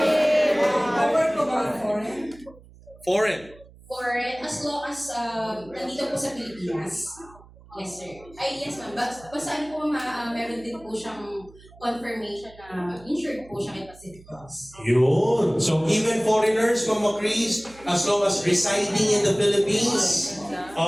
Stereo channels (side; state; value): right; noise; hum, 23 dB below the sound